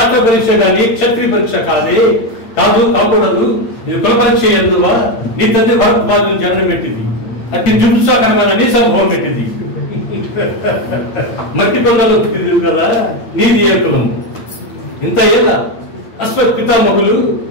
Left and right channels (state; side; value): late; right; 8.7 ms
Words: పరీక్ష కానీ క్షత్రియ పరీక్ష కాకూడదు. ఇది కుల పరీక్ష ఎందువా? నీ తండ్రి భరద్వాజుని జన్మ పెట్టింది, అతి జుంసాకరమైన నీ సంభవం పెట్టింది. మట్టి కొండలో పుట్టింది కదా, నీది ఏ కులము? ఇంత ఏళ్ళ అశ్వత్ పితామహులు